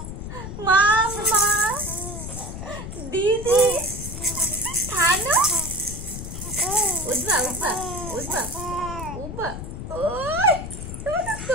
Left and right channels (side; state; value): left; noise; rumble, 8 dB below the sound